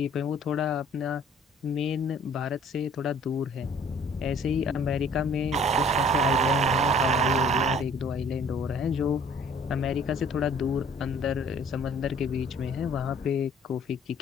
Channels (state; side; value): normal; both; correlation 0.55